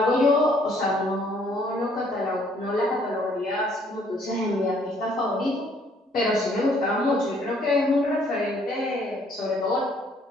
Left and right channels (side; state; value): both; normal; correlation 0.63